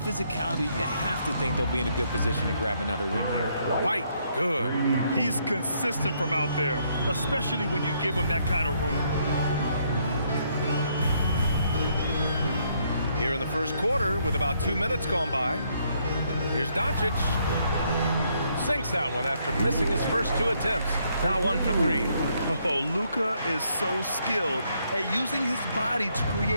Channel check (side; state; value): both; inverted; correlation -0.72